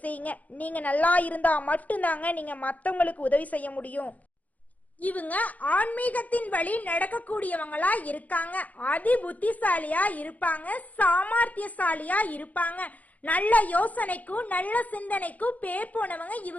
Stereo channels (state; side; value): late; right; 0.076 ms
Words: செய்யுங்க. நீங்க நல்லா இருந்தா மட்டும்தாங்க நீங்க மற்றவங்களுக்கு உதவி செய்ய முடியும். இவங்க ஆன்மீகத்தின் வழி நடக்கக்கூடியவங்களா இருக்காங்க. அதி புத்திசாலியா இருப்பாங்க, சாமர்த்தியசாலியா இருப்பாங்க. நல்ல யோசனைக்கும் நல்ல சிந்தனைக்கும் பேர் போனவங்க